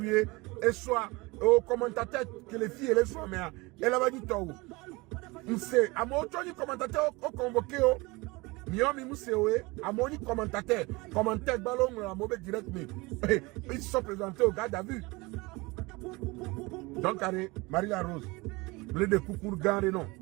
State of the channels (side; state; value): left; quieter; 24.1 dB